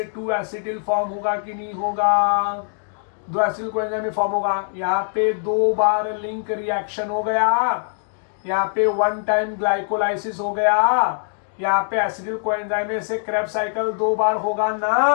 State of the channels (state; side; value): silent; right; digital silence